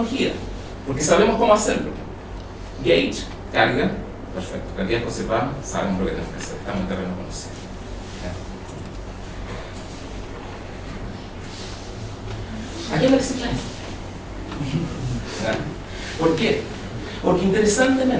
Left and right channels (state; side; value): identical; both; correlation 1.00